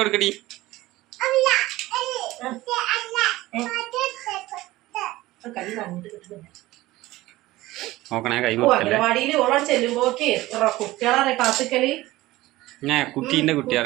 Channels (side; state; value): left; quieter; 17.8 dB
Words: നോക്കണേ കൈ. അംഗനവാടിയിൽ ഓളോട് ചെല്ലുമ്പോക്ക് കുട്ടികളെ കാത്തിക്കല്. കുട്ടീന്റെ